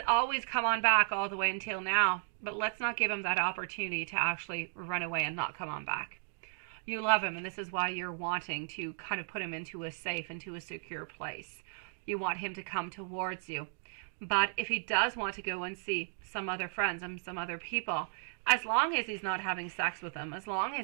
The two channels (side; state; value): left; silent; digital silence